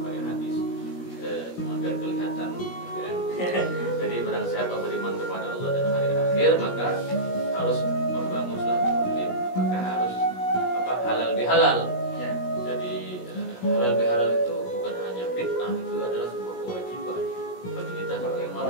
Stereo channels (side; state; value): right; late; 17 ms